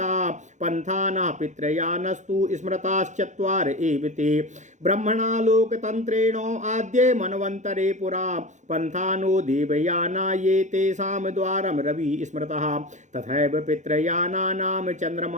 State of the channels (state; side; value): late; left; 0.35 ms